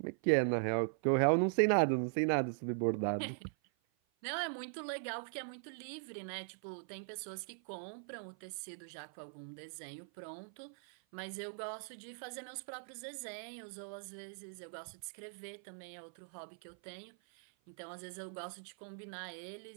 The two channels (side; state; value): left; silent; 51 dB below the other